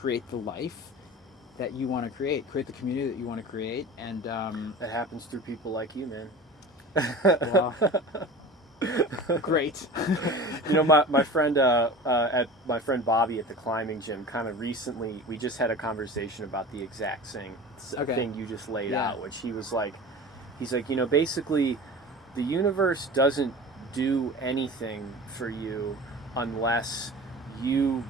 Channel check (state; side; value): normal; both; correlation 0.36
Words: the life that you want to create the community that you want to create, and that happens through people like you, man. Well, great. My friend my friend Bobby at the climbing gym kind of recently, we just had a conversation about the exact same thing you just laid out, which he's like, basically the universe doesn't do anything for you unless you